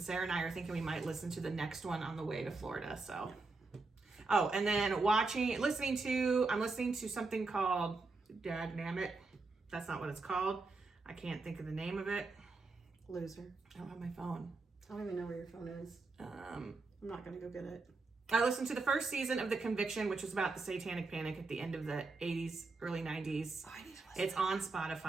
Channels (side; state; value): left; quieter; 3.7 dB